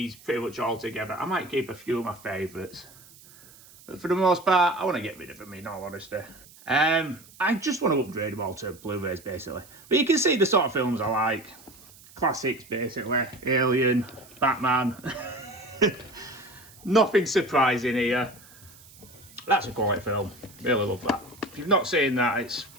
pretty much altogether. I might keep a few of my favourites. But for the most part, I want to get rid of them, in all honesty. I just want to upgrade them all to Blu-rays, basically. But you can see the sort of films I like. Classics, basically. Alien, Batman. Nothing surprising here. That's a quality film. Really love that. If you've not seen that, it's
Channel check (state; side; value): noise; right; hiss, 23 dB below the sound